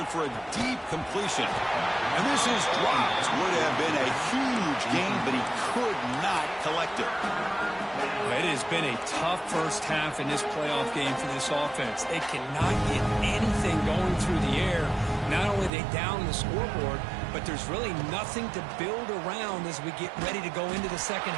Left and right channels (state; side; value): drops out; left; at 15.7 s